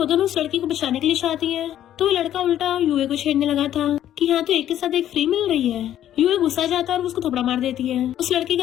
दोनों उस लड़की को बचाने के लिए चाहती है, तो वो लड़का उल्टा यूए को छेड़ने लगा था कि यहाँ तो एक के साथ एक फ्री मिल रही है। यूए गुस्सा जाता है और उसको थप्पड़ मार देती है। उस लड़की का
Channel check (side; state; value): right; quieter; 11.5 dB